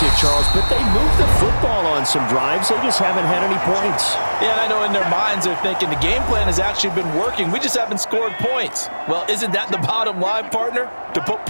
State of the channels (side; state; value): both; inverted; correlation -1.00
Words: Charles, but they moved the football on some drives. They just haven't had any points. Yeah, I know in their minds they're thinking the game plan has actually been working. We just haven't scored points. Well, isn't that the bottom line, partner? To put